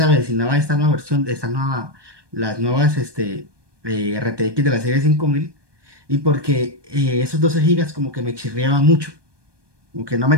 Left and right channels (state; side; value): late; left; 1.2 ms